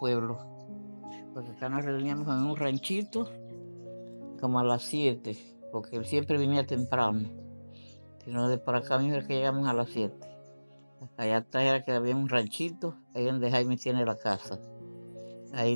Porque acá nos reuníamos en un ranchito, como a las 7, porque él siempre venía temprano. Sino de por acá mismo es que llegamos a las 7. Allá atrás era que había un ranchito, ahí donde Jaime tiene la casa. Ahí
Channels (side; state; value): both; inverted; correlation -1.00